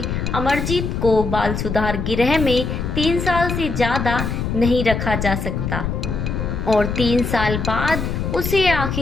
अमरजीत को बाल सुधार गृह में 3 साल से ज़्यादा नहीं रखा जा सकता, और 3 साल बाद उसे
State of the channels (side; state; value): left; noise; rumble, 2 dB below the sound